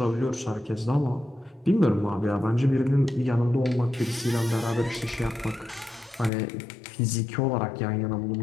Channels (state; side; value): drops out; right; at 6.3 s